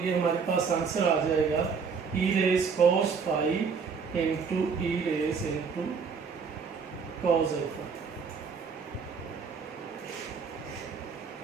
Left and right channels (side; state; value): left; quieter; 5.6 dB